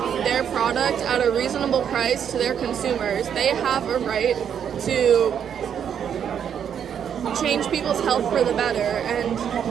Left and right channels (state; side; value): quieter; left; 8.4 dB